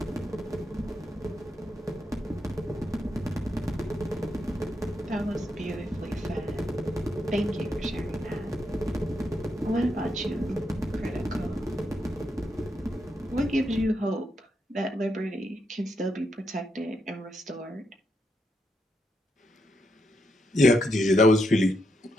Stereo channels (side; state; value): both; normal; correlation 0.81